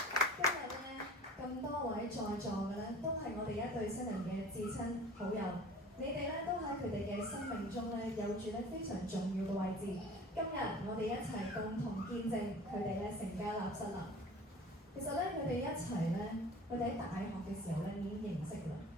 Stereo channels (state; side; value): normal; both; correlation 0.43